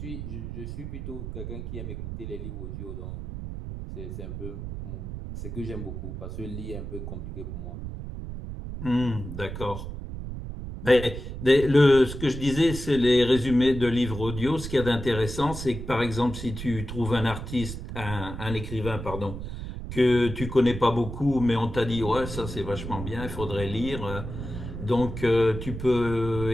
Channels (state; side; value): noise; right; rumble, 8 dB below the sound